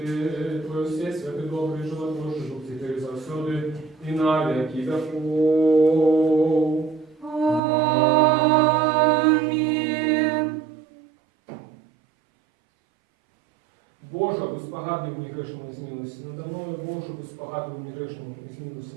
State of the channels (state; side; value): drops out; left; at 7.6 s